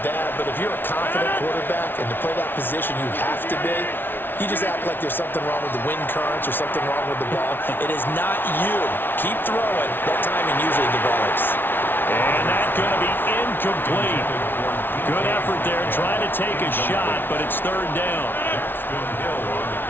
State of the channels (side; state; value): right; late; 0.10 ms